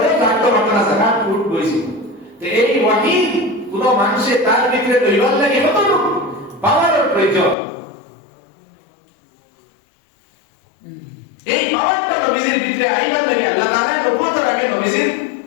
জাগতে পারত না জায়গা উট কইছি তো এই ওয়াহি কোন মানুষে তার ভিতরে দৈবাল লাগে কত পাওয়ারের প্রয়োজন এই পাওয়ারটা নবীজির ভিতরে আইবার লাগে আল্লাহ তাআলা নবুয়তের আগে নবীজির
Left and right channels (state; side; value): drops out; right; at 7.6 s